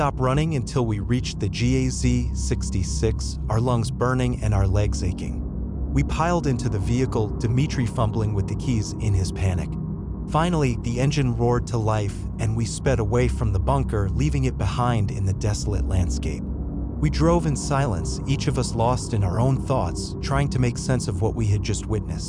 running until we reached the GAZ-66, our lungs burning and our legs aching. We piled into the vehicle, Dmitri fumbling with the keys in his panic. Finally, the engine roared to life, and we sped away from the bunker, leaving it behind in the desolate landscape. We drove in silence, each of us lost in our own thoughts, trying to make sense of what we had just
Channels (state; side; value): identical; both; correlation 1.00